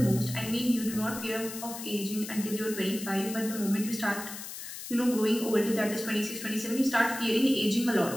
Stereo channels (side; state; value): left; noise; hiss, 10 dB below the sound